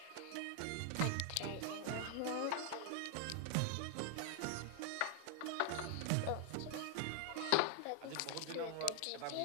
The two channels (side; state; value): both; different; correlation 0.00